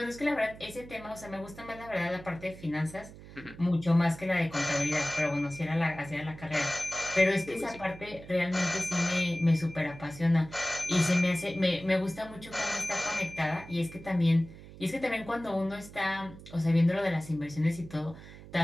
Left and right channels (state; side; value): noise; right; hum, 17 dB below the sound